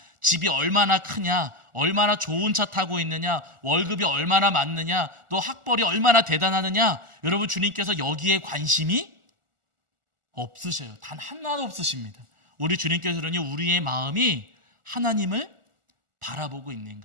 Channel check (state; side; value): late; left; 1.4 ms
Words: 집이 얼마나 크냐, 얼마나 좋은 차 타고 있느냐, 월급이 얼마나 많느냐, 또 학벌이 얼마나 대단하느냐, 여러분, 주님께서 여기에 관심이 없으셔요. 단 하나도 없으십니다. 우리 주님께서는요, 우리의 마음이 하나님을 바라보고